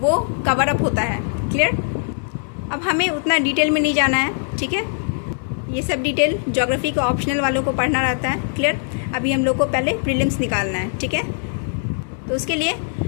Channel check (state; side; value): silent; right; digital silence